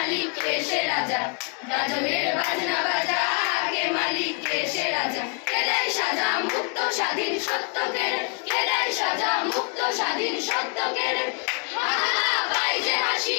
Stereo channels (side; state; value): right; quieter; 36.6 dB